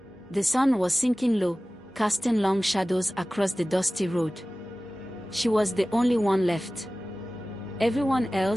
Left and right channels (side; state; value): both; normal; correlation 0.97